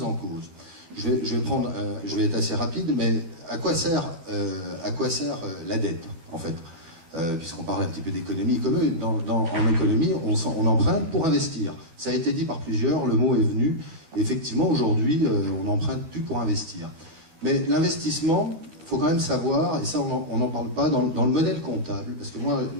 en cause. Je vais être assez rapide, mais à quoi sert la dette, en fait, puisqu'on parle un petit peu d'économie. En économie, on emprunte pour investir. Ça a été dit par plusieurs, le mot est venu. Effectivement, aujourd'hui, on n'emprunte plus pour investir. Mais l'investissement, il faut quand même savoir, et ça on n'en parle pas, dans le modèle comptable, parce que moi,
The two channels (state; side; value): late; left; 12 ms